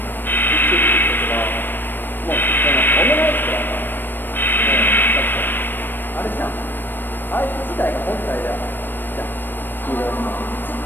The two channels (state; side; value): late; right; 0.094 ms